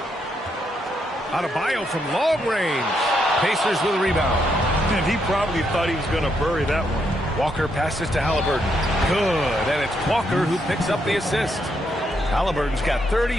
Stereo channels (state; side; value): normal; both; correlation 0.77